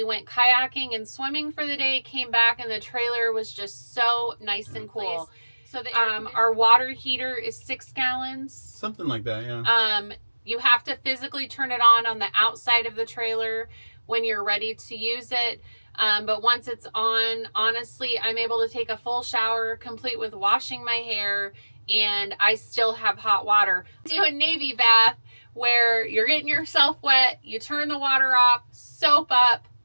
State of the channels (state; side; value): inverted; both; correlation -1.00